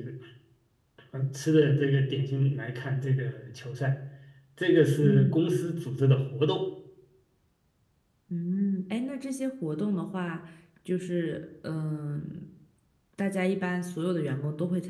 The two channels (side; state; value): both; identical; correlation 1.00